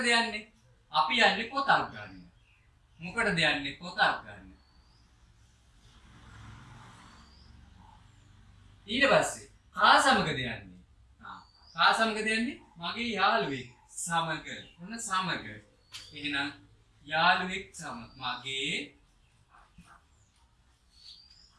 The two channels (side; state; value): both; identical; correlation 1.00